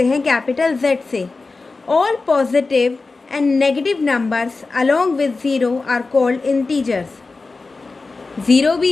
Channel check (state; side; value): quieter; right; 3.8 dB